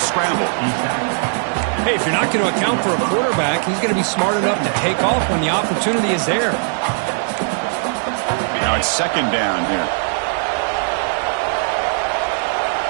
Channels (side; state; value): left; silent; digital silence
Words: scramble. Hey, if you're not going to account for a quarterback, he's going to be smart enough to take off when the opportunity is there. Now it's second down here.